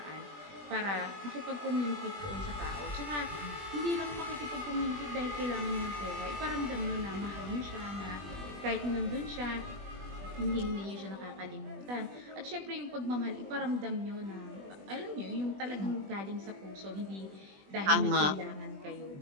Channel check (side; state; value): left; late; 20 ms